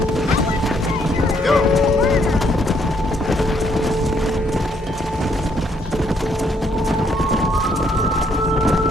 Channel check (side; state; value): both; normal; correlation 0.70